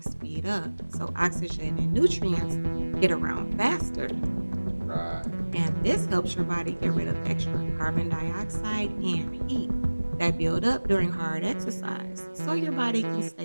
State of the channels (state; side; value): inverted; both; correlation -1.00